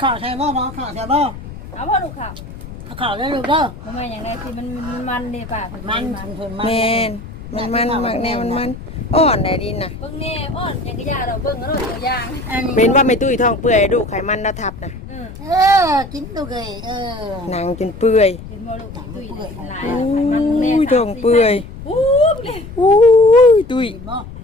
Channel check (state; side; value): noise; left; rumble, 13 dB below the sound